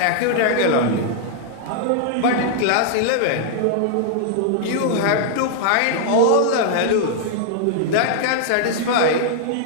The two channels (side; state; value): both; different; correlation -0.01